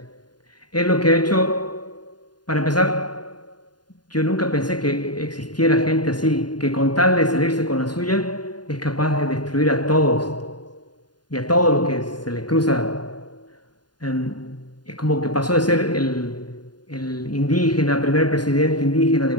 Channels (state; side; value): late; right; 0.70 ms